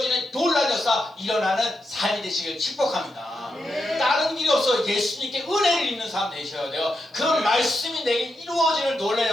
놀라운 역사 일어나는 삶이 되시길 축복합니다. 다른 길이 없어. 예수님께 은혜를 입는 사람 되셔야 돼요. 그 말씀이 내게 이루어지는 놀라운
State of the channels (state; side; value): normal; both; correlation 0.85